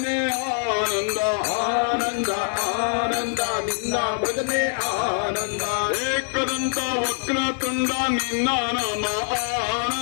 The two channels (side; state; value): right; silent; digital silence